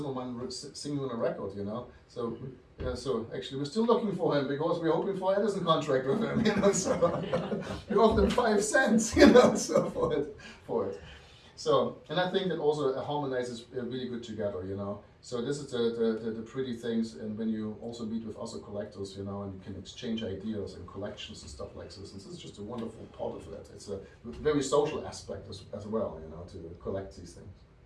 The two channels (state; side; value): identical; both; correlation 1.00